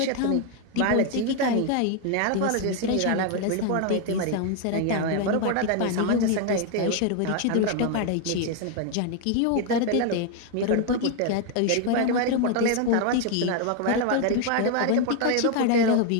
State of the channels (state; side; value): different; both; correlation 0.01